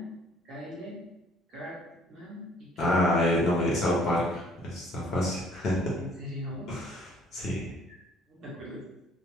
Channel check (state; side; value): normal; both; correlation 0.59